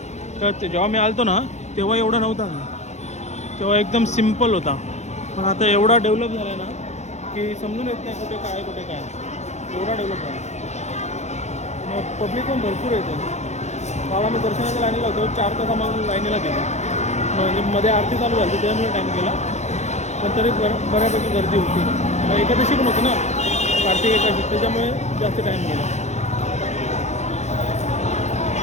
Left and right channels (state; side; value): late; right; 0.33 ms